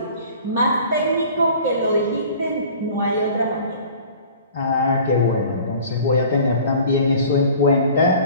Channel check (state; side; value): inverted; both; correlation -0.46